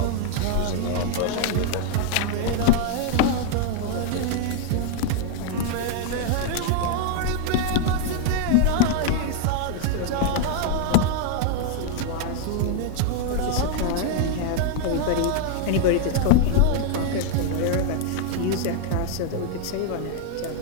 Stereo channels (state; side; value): different; both; correlation 0.00